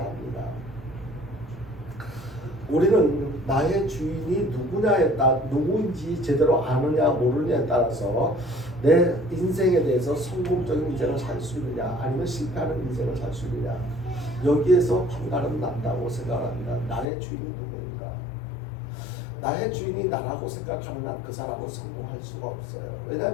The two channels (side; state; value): right; drops out; at 17.1 s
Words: 합니다. 우리는 나의 주인이 누구인지 제대로 아느냐 모르느냐에 따라서 내 인생에 대해서 성공적인 인생을 살 수 있느냐 아니면 실패하는 인생을 살 수 있느냐 여기에서 판가름 난다고 생각합니다. 나의 주인이 누구인가? 나의 주인이 나라고 생각하는 한 그 사람은 성공할 수가 없어요.